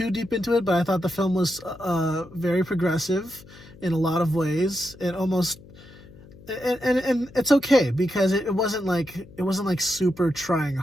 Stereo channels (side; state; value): left; noise; hum, 21 dB below the sound